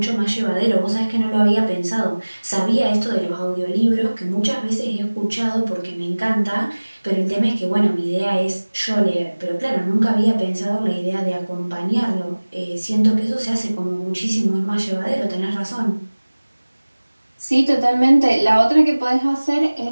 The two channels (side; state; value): both; inverted; correlation -1.00